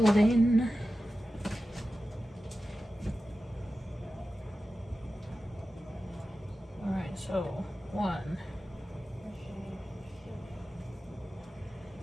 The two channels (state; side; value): normal; both; correlation 0.94